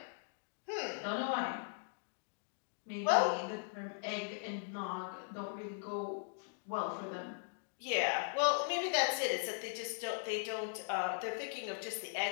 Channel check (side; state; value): right; silent; digital silence